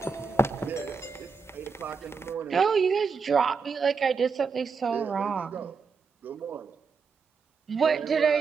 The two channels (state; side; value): quieter; left; 5.3 dB